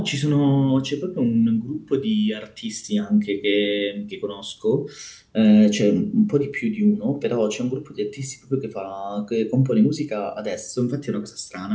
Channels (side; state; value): both; identical; correlation 1.00